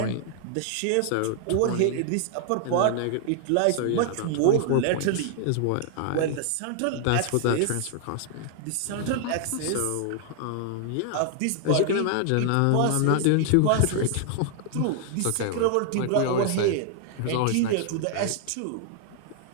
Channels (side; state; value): both; different; correlation 0.00